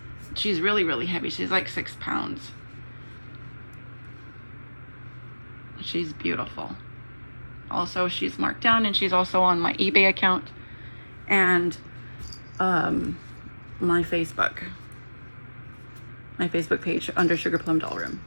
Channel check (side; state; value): both; inverted; correlation -1.00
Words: She's really heavy. She's like 6 pounds. She's beautiful. Also, she's marked down, and she's also on my eBay account and my Facebook page under Sugar Plum Doll Room.